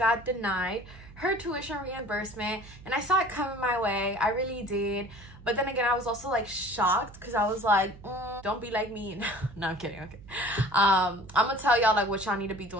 denied her tuition reimbursement, and I saw it coming my way. I really did. But then again, I was also like shocked, because I was like, don't be like me. No, I'm kidding. Okay. I'm gonna tell y'all like what y'all need to be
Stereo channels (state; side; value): noise; right; hum, 19 dB below the sound